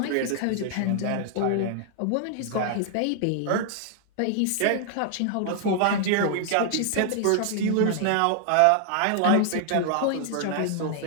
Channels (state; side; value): different; both; correlation 0.00